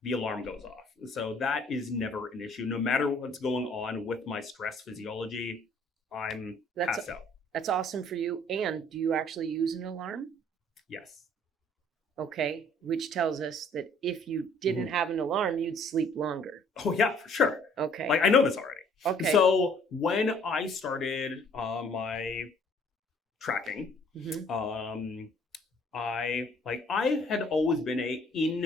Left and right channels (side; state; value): both; normal; correlation 0.59